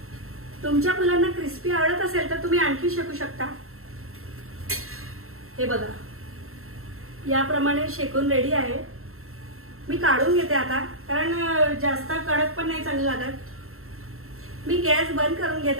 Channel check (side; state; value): left; late; 0.62 ms